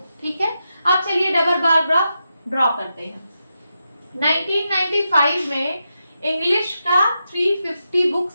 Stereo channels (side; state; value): both; inverted; correlation -0.87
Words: ठीक है, अब चलिए डबल बार ग्राफ ड्रॉ करते हैं। 1995 में इंग्लिश का 350 बुक